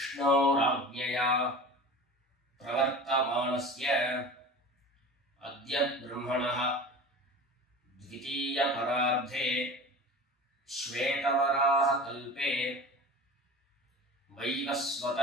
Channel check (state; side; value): normal; both; correlation 0.36